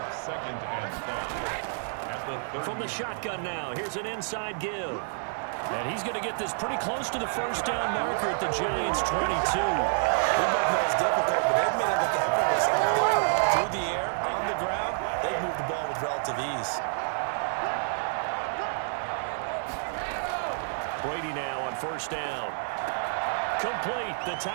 2nd and 5. At the 30. From the shotgun now, here's an inside give. And he's going to get this pretty close to the first down marker at the Giants' 22. We both know it's difficult, but they've made it look effortless out there. Through the air, on the ground, they've moved the ball with relative ease. Brady now on first down. Complete, the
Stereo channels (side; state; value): left; silent; digital silence